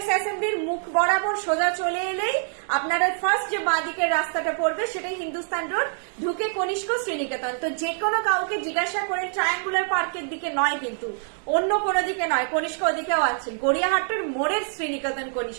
অ্যাসেম্বলির মুখ বরাবর সোজা চলে এলেই আপনারা ফার্স্ট যে বাঁদিকের রাস্তাটা পড়বে সেটাই হিন্দুস্তান রোড, ঢুকে কনিষ্ক শ্রীনিকেতন। তো যে কোনো কাউকে জিজ্ঞাসা করে ট্রায়াঙ্গুলার পার্কের দিকে নয়, কিন্তু অন্য কোনো দিকে নয়, কনিষ্ক ওদিকেও আছে। গড়িয়াহাটের মোড়ের শ্রীনিকেতন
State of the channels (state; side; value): silent; left; 62 dB below the other